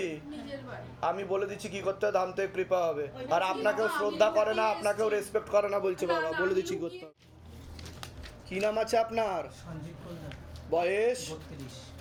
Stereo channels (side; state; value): both; identical; correlation 1.00